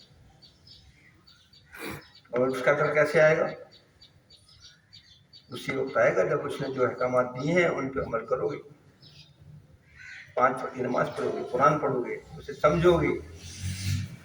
اور اس کا ڈر کیسے آئے گا؟ اسی وقت آئے گا جب اس نے جو احکامات دیے ہیں ان پہ عمل کرو گے، 5 وقت کی نماز پڑھو گے، قرآن پڑھو گے، اسے سمجھو گے،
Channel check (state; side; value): identical; both; correlation 1.00